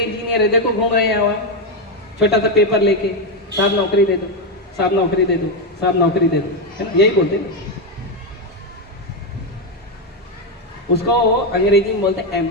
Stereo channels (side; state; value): both; normal; correlation 0.07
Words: है देखो घूम रहे हैं वहां, छोटा सा पेपर लेके, साहब नौकरी दे दो, साहब नौकरी दे दो, साहब नौकरी दे दो, है ना, यही बोलते हैं। उसको अंग्रेजी में बोलते हैं